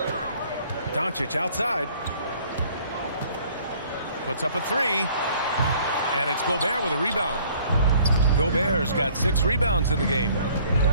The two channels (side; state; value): both; inverted; correlation -0.57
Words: Doncic outside. Puts up a 3. And it's Gobert with a rebound. Gobert's got 6 rebounds in the game.